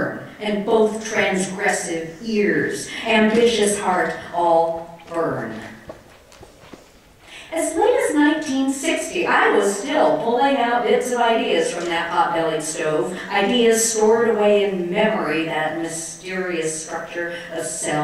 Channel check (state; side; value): identical; both; correlation 1.00